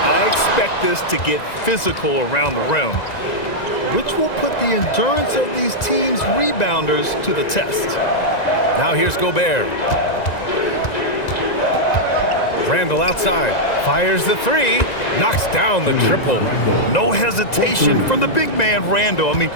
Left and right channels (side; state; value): right; late; 1.9 ms